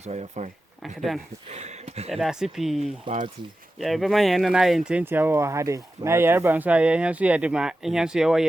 I fine Uncle Dan. Ya sipi. party Ya be man yen na ye ntentia wo ha de. Na ye reba nso ye hen so ye de ma hen so ye wo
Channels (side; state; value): both; normal; correlation 0.93